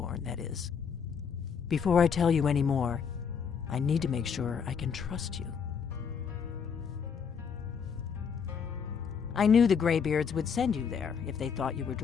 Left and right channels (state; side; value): quieter; right; 6.6 dB